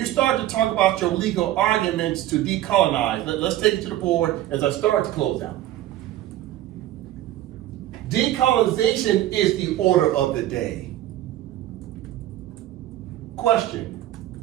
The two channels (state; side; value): quieter; left; 13.9 dB